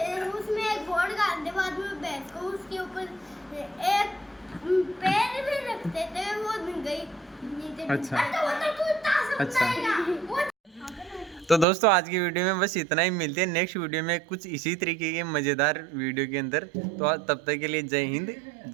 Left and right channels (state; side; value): drops out; left; at 11.7 s